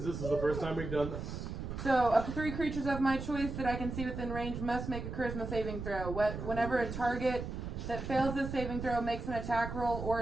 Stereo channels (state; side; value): noise; right; rumble, 6 dB below the sound